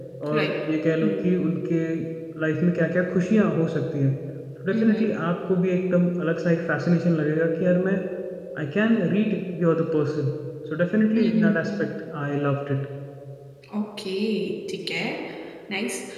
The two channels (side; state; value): both; identical; correlation 1.00